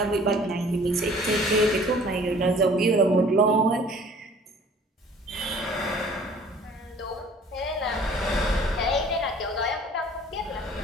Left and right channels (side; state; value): both; normal; correlation 0.51